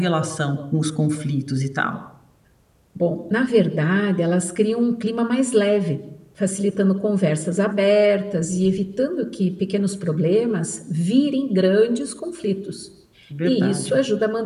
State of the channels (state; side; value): identical; both; correlation 1.00